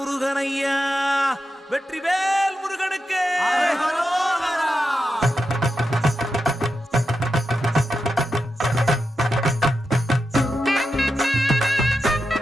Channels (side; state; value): both; normal; correlation 0.89